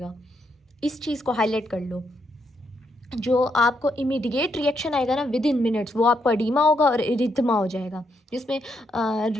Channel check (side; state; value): both; normal; correlation 0.78